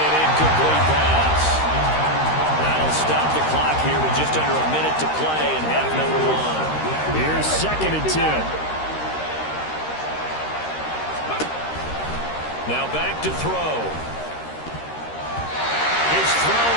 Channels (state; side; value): late; right; 13 ms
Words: an incomplete pass. That'll stop the clock here with just under a minute to play in half number 1. Here's 2nd and 10. Now back to throw. His throw